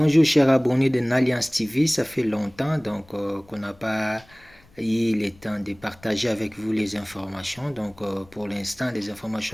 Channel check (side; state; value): left; noise; rumble, 28 dB below the sound